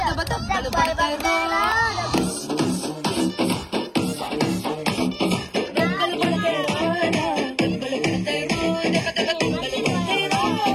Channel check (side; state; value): both; identical; correlation 1.00